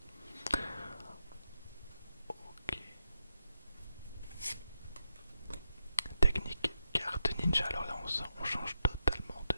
Ok. Technique carte ninja. Alors là on change totalement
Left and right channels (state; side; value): inverted; both; correlation -0.84